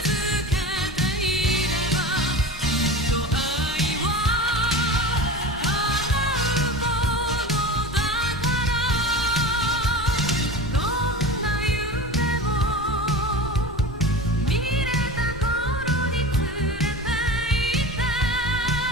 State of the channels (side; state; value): both; normal; correlation 0.31